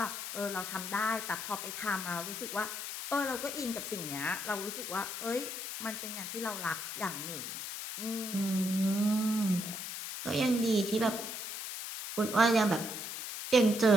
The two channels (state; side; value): noise; left; hiss, 6 dB below the sound